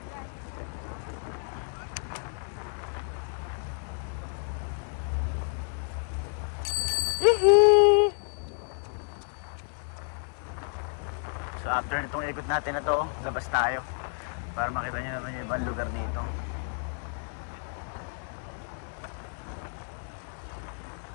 So after nitong ikot natin na to, labas tayo para makita nyo naman yung ibang lugar dito.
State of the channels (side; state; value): right; silent; 57 dB below the other